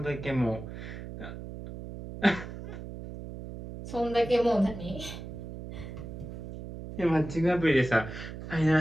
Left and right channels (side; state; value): right; noise; hum, 10 dB below the sound